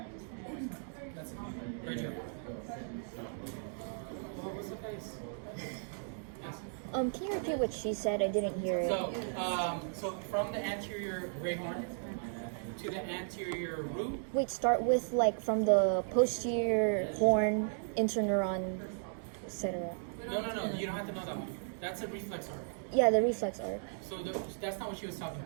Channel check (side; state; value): left; silent; digital silence